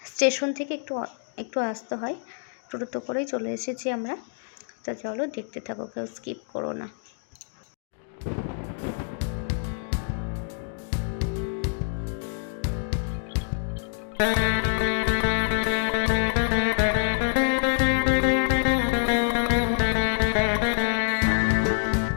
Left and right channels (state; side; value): silent; right; digital silence